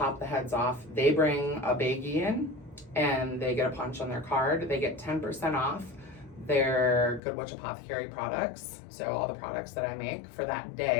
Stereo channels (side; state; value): right; drops out; at 7.2 s